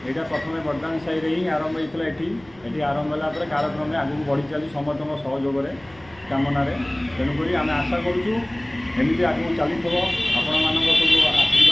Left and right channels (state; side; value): noise; right; rumble, 26 dB below the sound